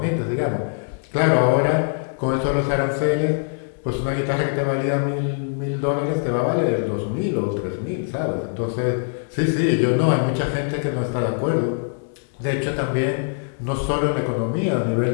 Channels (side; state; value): right; silent; digital silence